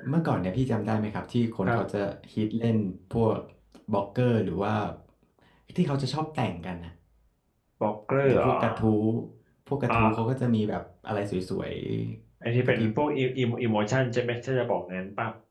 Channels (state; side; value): identical; both; correlation 1.00